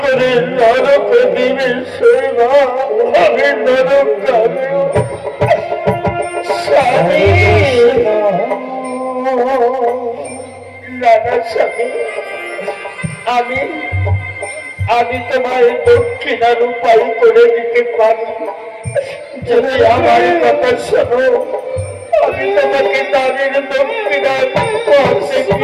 করে নরক দিবে শৈবা, আমি নরক যাবে। স্বামী, নানা স্বামী, আমি তোমার দক্ষিণার উপায় করে দিতে পারি, যদি আমার কথা শোনো। আমি তোমাকে দানের দক্ষিণার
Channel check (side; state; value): both; identical; correlation 1.00